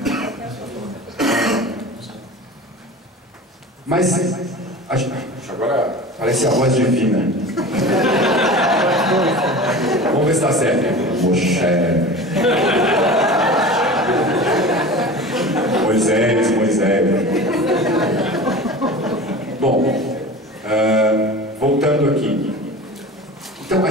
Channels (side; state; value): both; normal; correlation 0.35